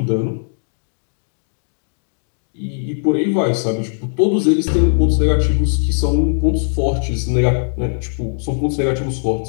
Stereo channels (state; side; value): silent; right; digital silence